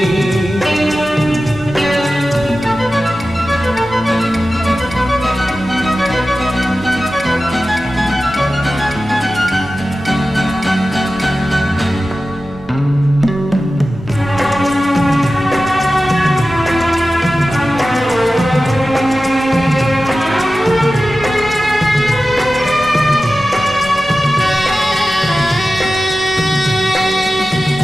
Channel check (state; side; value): noise; right; rumble, 23 dB below the sound